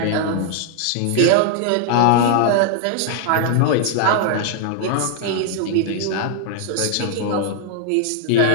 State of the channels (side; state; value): both; different; correlation 0.00